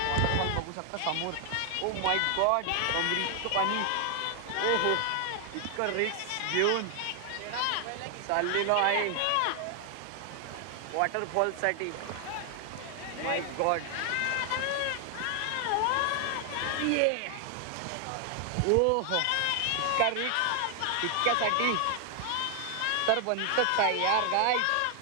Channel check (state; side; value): different; both; correlation 0.00